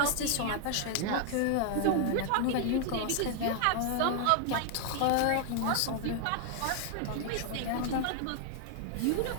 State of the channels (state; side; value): different; both; correlation 0.00